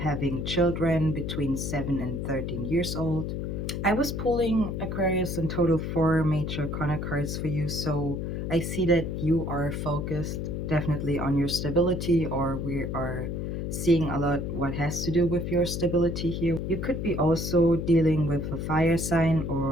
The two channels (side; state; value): left; noise; hum, 3 dB below the sound